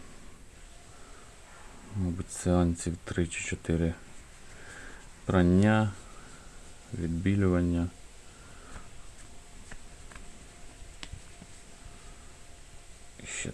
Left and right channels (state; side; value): identical; both; correlation 1.00